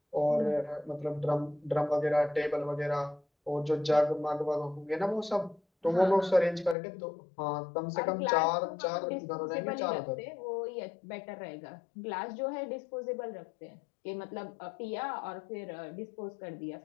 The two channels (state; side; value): drops out; right; at 6.8 s